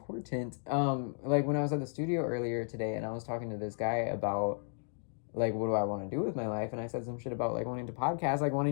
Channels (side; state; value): right; silent; digital silence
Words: when I was at the studio earlier today and I was talking to this guy about, like, what do I want to do with my life, and I said some shit about, like, wanting to podcast, like,